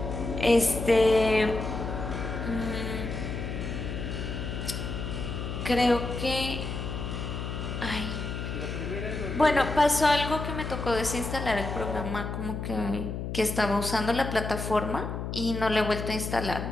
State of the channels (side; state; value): left; noise; hum, 5 dB below the sound